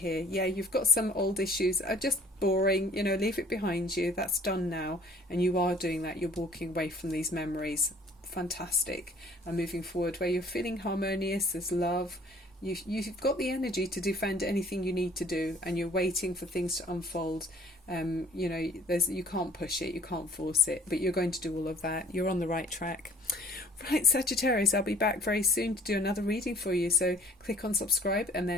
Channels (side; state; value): both; normal; correlation 0.54